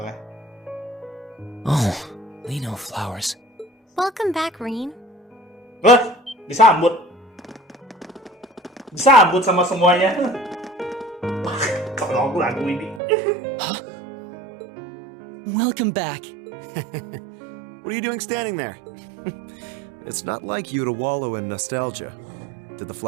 Oh, Leno flowers. Welcome back, Rin. Wah, disambut sama semuanya. Kalau aku lagu ini. Huh? Welcome back. What are you doing standing there? It's not like you to wallow in nostalgia. Did the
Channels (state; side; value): drops out; left; at 13.0 s